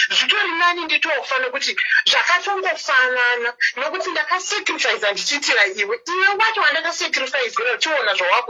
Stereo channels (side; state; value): both; identical; correlation 1.00